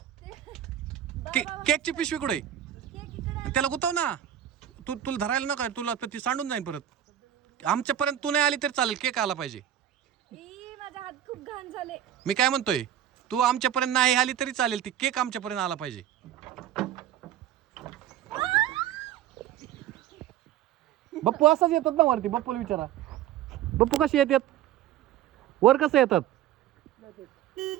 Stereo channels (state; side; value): quieter; left; 11.2 dB